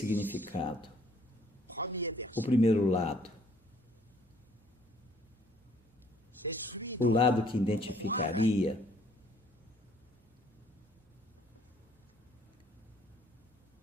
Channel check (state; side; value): normal; both; correlation 0.61